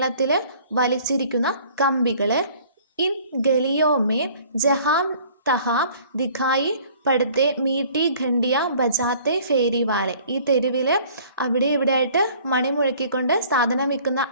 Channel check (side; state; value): both; inverted; correlation -0.53